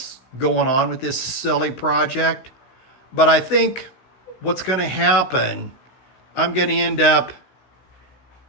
going on with this silly project. But I think what's going to happen, I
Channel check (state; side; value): late; right; 16 ms